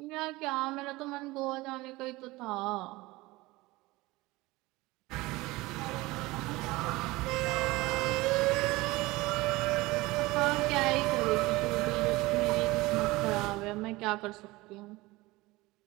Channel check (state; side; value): quieter; left; 20.8 dB